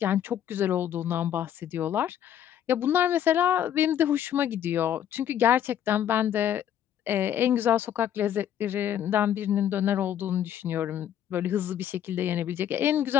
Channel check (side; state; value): right; quieter; 10.2 dB